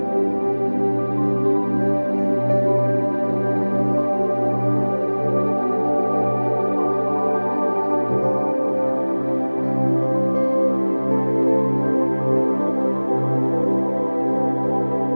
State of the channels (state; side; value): inverted; both; correlation -1.00